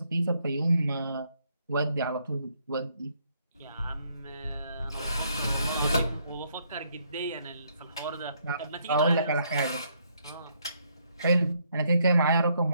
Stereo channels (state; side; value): inverted; both; correlation -0.72